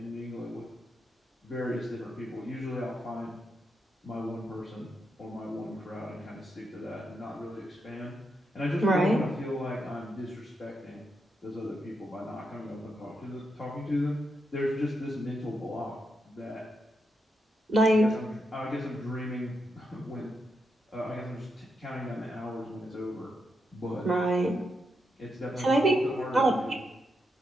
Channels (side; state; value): both; normal; correlation 0.83